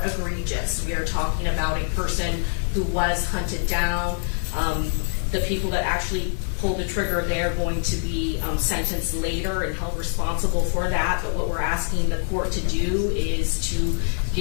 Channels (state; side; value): silent; right; 61 dB below the other